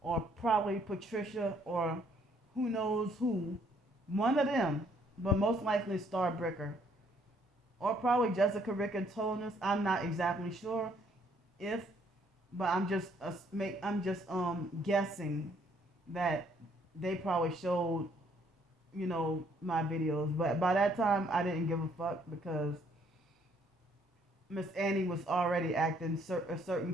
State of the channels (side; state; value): both; normal; correlation 0.66